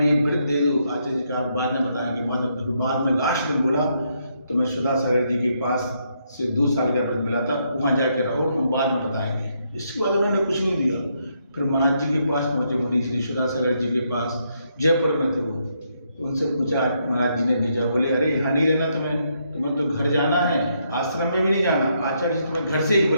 लिए व्रत दे दो। आचार्य जी का बाद में बताएंगे। बाद में लास्ट दिन बोला तो मैं सुधा सागर जी के पास से 2 साल का व्रत मिला था, वहाँ जाकर रहो, हम बाद में बताएंगे। इसके बाद उन्होंने कुछ नहीं दिया। फिर महाराज जी के पास पहुँचे, मुनि श्री सुधा सागर जी के पास, जयपुर में थे वो। तो उनसे पूछा, महाराज जी ने भेजा, बोले अरे यहाँ नहीं रहना तुम्हें तो घर जाना है, आश्रम में भी नहीं जाना। आचार्य जी तुम्हें घर से ही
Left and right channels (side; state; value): both; inverted; correlation -0.76